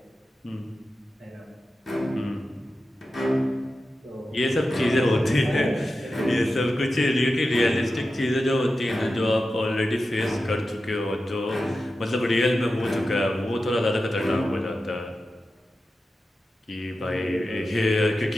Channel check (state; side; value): normal; both; correlation 0.92